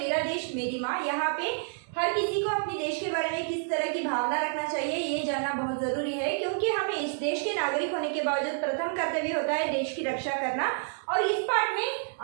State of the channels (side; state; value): left; silent; 59 dB below the other